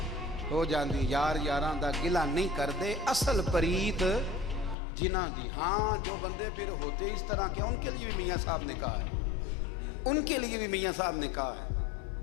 ہو جاندی. یار یاراں دا گلا نہیں کردے اصل پریت جنہ دی. ہاں جو بندے پھر ہوتے اس طرح کے ان کے لیے بھی میاں صاحب نے کہا ہے, ان کے لیے بھی میاں صاحب نے کہا ہے,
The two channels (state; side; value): drops out; right; at 4.8 s